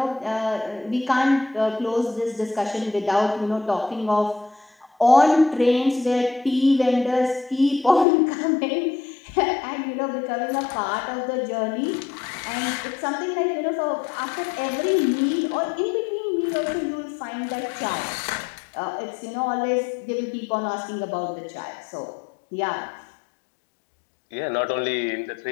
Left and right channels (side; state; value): right; drops out; at 8.1 s